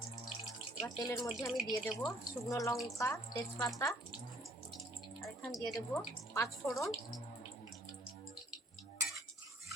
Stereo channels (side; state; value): both; normal; correlation 0.62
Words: এবার তেলের মধ্যে আমি দিয়ে দেবো শুকনো লঙ্কা, তেজপাতা, আর এখানে দিয়ে দেবো 5 ফোড়ন।